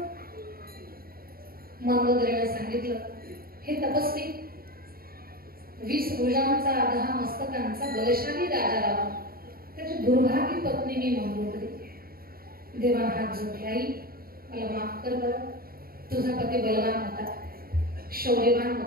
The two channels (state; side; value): late; left; 0.43 ms